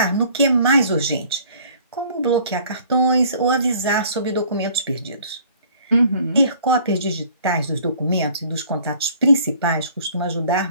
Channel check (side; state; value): both; inverted; correlation -0.54